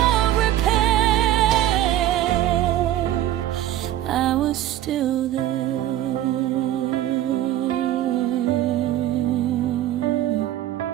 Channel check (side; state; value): left; quieter; 13.0 dB